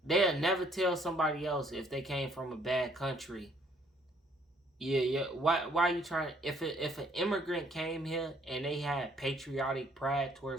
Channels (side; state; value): both; normal; correlation 0.64